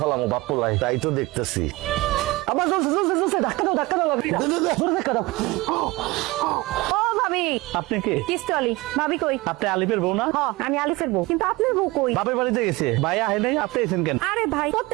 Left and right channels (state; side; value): quieter; left; 21.7 dB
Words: ফেলামো বাপ্পলাই। তাই তো দেখতেছি। আবার জ্বলছে জ্বলছে জ্বলছে, ধাক্কা দাও ধাক্কা দাও, জোরে ধাক্কা দাও। ও ভাবি, আপনি কে? কিস্তি আলি। ভাবি কই? আপনি আলিফের বউ না? হ, আমি আলিফের বউ, কিন্তু আপনার বউ কই? বাপের বাড়িতে গেছে। ভাই আহে নাই, আপনি এসেন কেন? আরে ভাই,